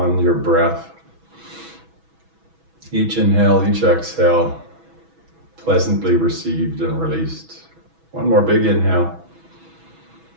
your breath. Each inhale, each exhale, pleasantly received and released. One more big inhale.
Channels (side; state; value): left; late; 6.1 ms